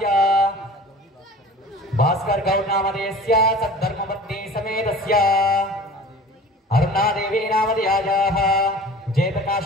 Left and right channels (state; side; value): normal; both; correlation 0.42